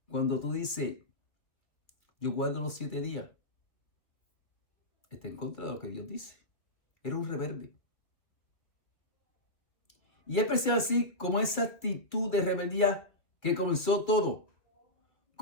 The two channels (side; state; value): right; late; 2.4 ms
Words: Cuando tú dices: yo guardo los 7 días, está en contra de lo que Dios dice. Era un rebelde. Y es precisamente así como esa actitud de rebeldía que comenzó todo.